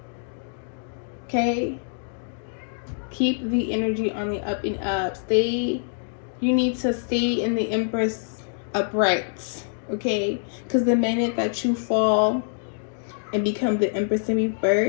Okay, keep the energy on the up and up. You need to stay in the Empress upright, okay? Because the minute that you fall and become the Empress in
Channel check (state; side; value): silent; right; digital silence